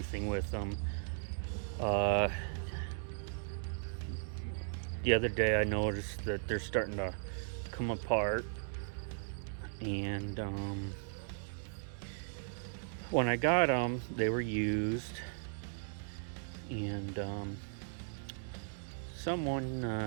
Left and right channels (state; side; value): silent; left; digital silence